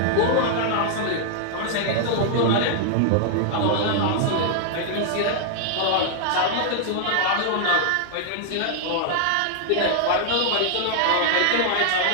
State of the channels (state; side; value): different; both; correlation 0.00